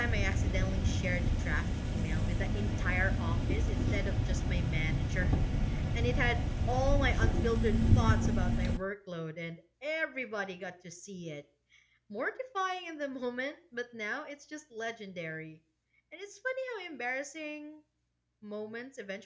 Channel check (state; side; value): identical; both; correlation 1.00